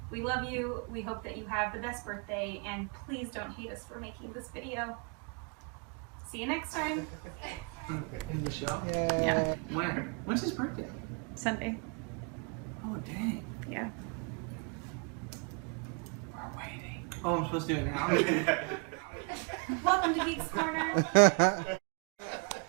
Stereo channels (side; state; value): left; quieter; 34.9 dB